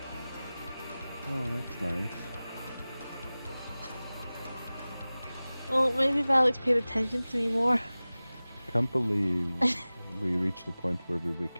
Oh, that's nice. Well, maybe if Alex paid attention to me more. Can't believe we reached the point where we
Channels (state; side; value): inverted; both; correlation -0.98